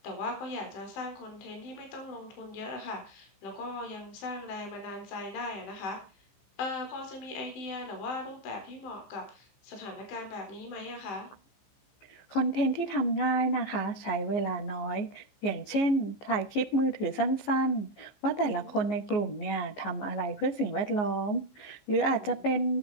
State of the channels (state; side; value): late; right; 14 ms